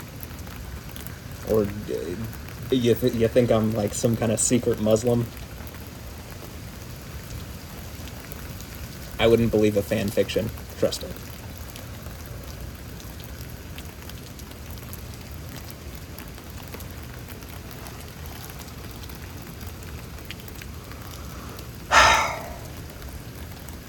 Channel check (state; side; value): identical; both; correlation 1.00